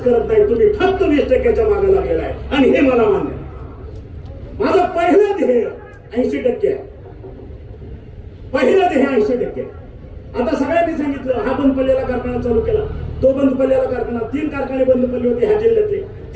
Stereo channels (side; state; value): both; identical; correlation 1.00